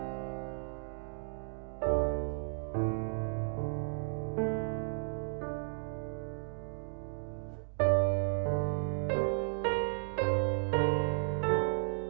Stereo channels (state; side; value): silent; left; digital silence